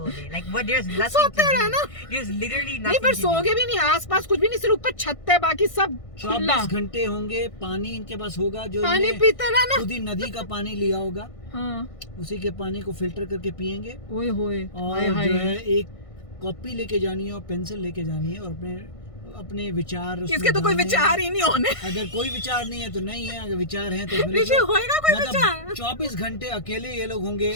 day? Like, what? There's nothing सोते to रहना। do. There's literally नहीं nothing पर to do. सोगे भी नहीं, आसपास कुछ भी नहीं, सिर्फ ऊपर छत है, बाकी सब खुला। 24 घंटे होंगे, पानी इनके पास होगा जो पानी इन्हें पीते रहना। खुद ही नदी का पानी लिया होगा, हाँ उसी के पानी को फिल्टर करके पियेंगे। ओए होए और जो है एक कॉपी लेके जानी है और पेंसिल लेके जानी है और अपने विचार उसमें इसके तो कोई डालने हैं। विचार ही नहीं होने। अगर कोई विचार नहीं है तो नहीं है, अगर विचार है तो फिर ऋषि होएगा कोई मतलब विचार? 24 घंटे अकेले ये लोग होंगे,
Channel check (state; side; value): late; right; 1.5 ms